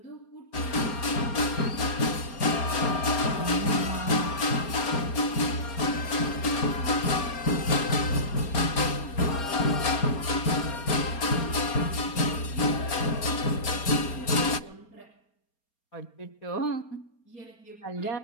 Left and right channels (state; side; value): late; right; 4.3 ms